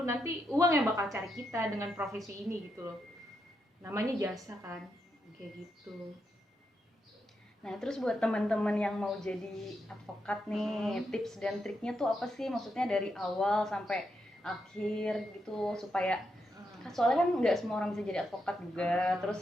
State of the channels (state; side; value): normal; both; correlation 0.83